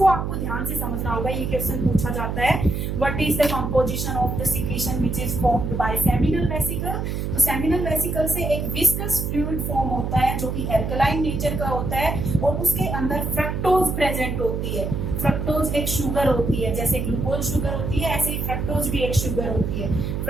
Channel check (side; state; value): right; noise; hum, 2 dB below the sound